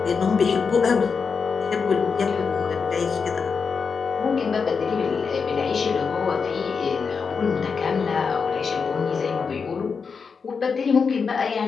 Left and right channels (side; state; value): right; quieter; 5.5 dB